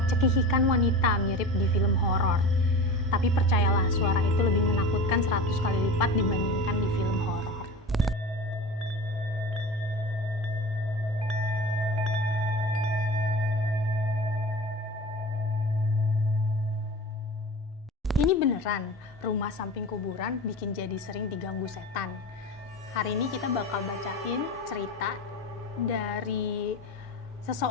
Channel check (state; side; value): normal; both; correlation 0.32